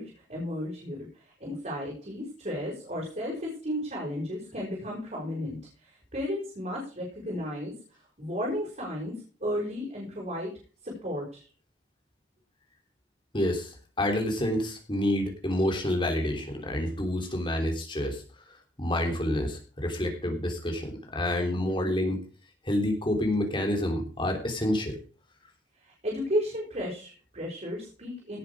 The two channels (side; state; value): both; normal; correlation 0.65